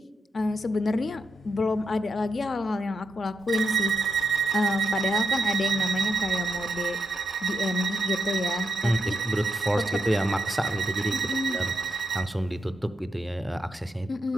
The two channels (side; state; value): both; normal; correlation 0.82